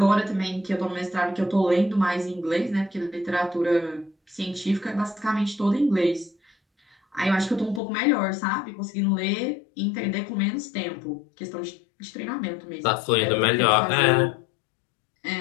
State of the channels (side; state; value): right; drops out; at 7.8 s